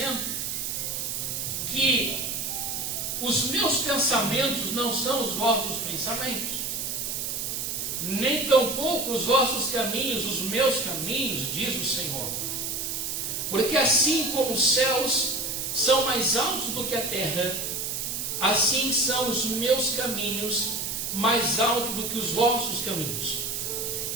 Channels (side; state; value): right; noise; hiss, 3 dB below the sound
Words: que os meus pensamentos não são os vossos pensamentos, nem tampouco os vossos caminhos, os meus caminhos, diz o Senhor. Porque assim como os céus são mais altos do que a terra, assim são os meus caminhos mais altos do que os vossos caminhos,